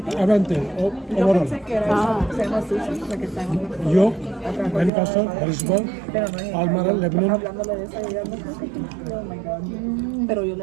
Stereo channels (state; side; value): drops out; left; at 4.9 s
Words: Yo overall. pensé que era se llama sushi, porque está en York, Lancaster, Harrisburg, pero no es. Almara, Lebanon. Hablándole de esa idea, no sé. Oh my God. Pero yo